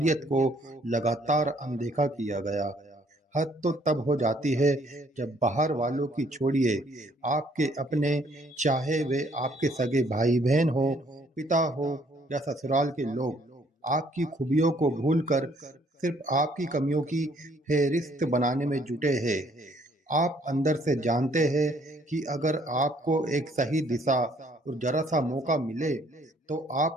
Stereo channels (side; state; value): both; normal; correlation 0.64